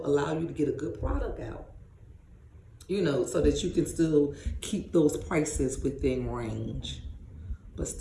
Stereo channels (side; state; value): both; identical; correlation 1.00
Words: allow you to get a good product out. You know, so that you can still keep those prices within range, but